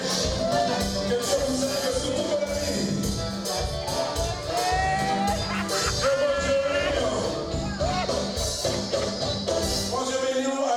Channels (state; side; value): identical; both; correlation 1.00